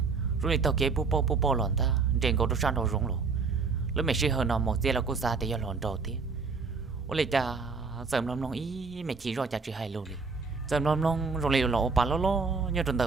rồi tao kế bố bố lòn ta trên cầu sang đầu rung luôn lúc mẹ sẽ hơn nó một giờ là cô xa thì giờ lòn đầu tiếc ôi lại cha sớm lòng ý mẹ chỉ rồi cha chỉ hay luôn đi sớm lòng rồi lại lộ bà lo như trong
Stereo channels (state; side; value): quieter; left; 4.7 dB